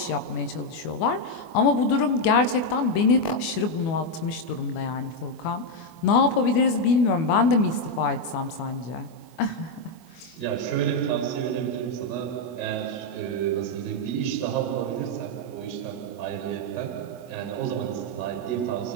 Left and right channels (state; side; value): late; right; 24 ms